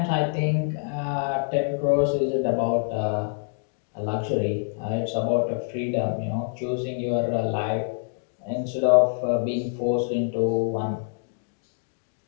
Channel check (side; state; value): right; silent; digital silence